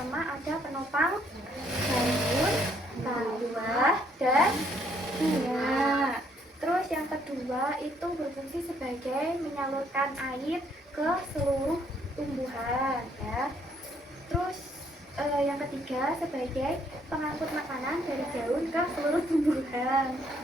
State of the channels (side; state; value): both; normal; correlation 0.68